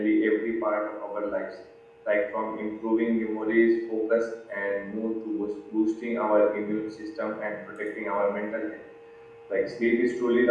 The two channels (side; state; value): both; identical; correlation 1.00